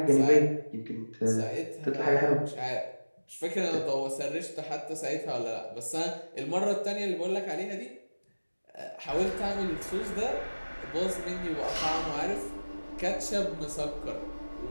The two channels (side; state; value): both; inverted; correlation -1.00